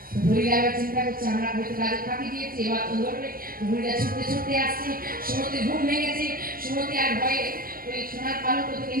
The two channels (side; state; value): left; late; 0.42 ms